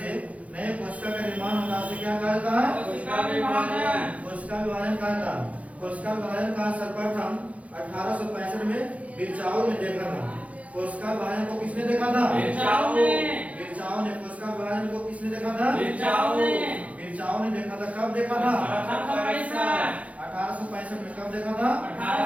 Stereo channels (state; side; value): late; left; 0.066 ms